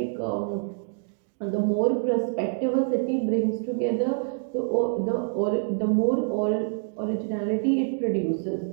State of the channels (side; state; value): left; silent; digital silence